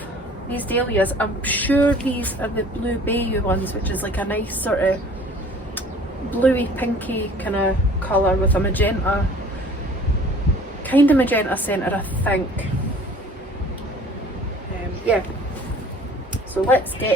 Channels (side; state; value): both; normal; correlation 0.49